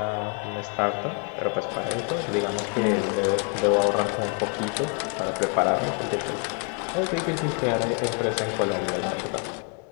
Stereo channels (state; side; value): quieter; right; 37.4 dB